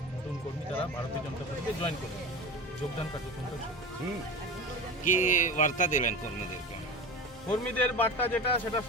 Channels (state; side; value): normal; both; correlation 0.30